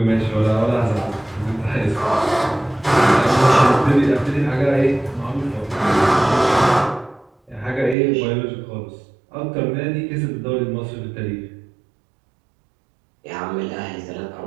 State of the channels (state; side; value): drops out; left; at 8.0 s